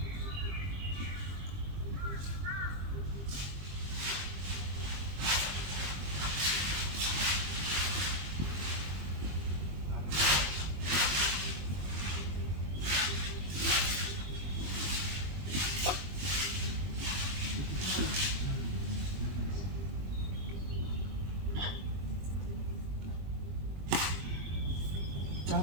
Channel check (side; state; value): left; late; 21 ms